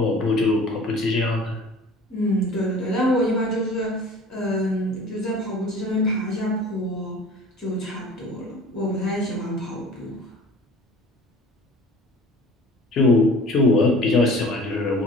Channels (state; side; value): normal; both; correlation 0.44